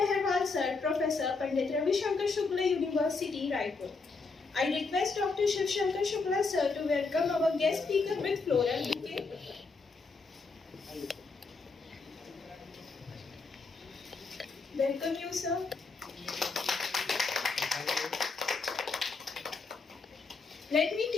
Sir, Professor, Pandit Ravi Shankar Shukla University, Raipur. I request Dr. Shiv Shankar Shukla Sir to welcome our guest speaker with floral bouquet. Welcome you, sir. Let me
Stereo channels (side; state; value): right; quieter; 4.2 dB